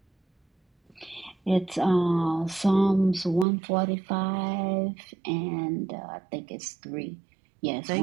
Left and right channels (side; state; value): left; drops out; at 3.5 s